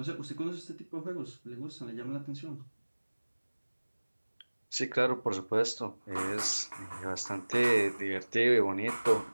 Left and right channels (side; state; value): both; inverted; correlation -1.00